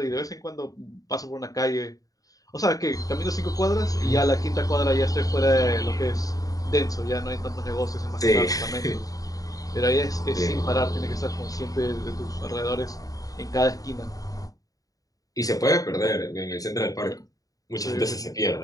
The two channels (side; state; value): right; late; 0.17 ms